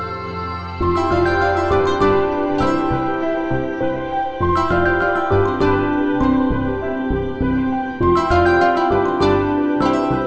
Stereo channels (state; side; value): identical; both; correlation 1.00